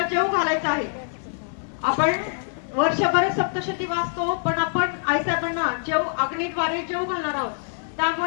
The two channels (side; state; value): right; silent; digital silence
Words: जेव घालायचं आहे. आपण वर्षभर सप्तशती वाचतो, पण आपण आईसाहेबांना जेव अग्नीद्वारे जेव घालणार आहोत.